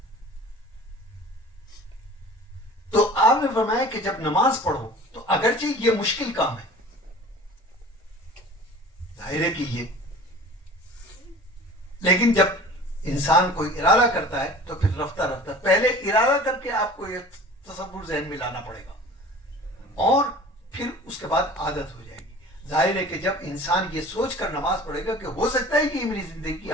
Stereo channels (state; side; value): normal; both; correlation 0.43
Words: تو آپ نے فرمایا کہ جب نماز پڑھو تو اگرچہ یہ مشکل کام ہے, ظاہر ہے کہ یہ, لیکن جب انسان کوئی ارادہ کرتا ہے تو پھر رفتہ رفتہ پہلے ارادہ کر کے آپ کو یہ تصور ذہن میں لانا پڑے گا اور پھر اس کے بعد عادت ہو جائے گی. ظاہر ہے کہ جب انسان یہ سوچ کر نماز پڑھے گا کہ ہو سکتا ہے کہ یہ میری زندگی کی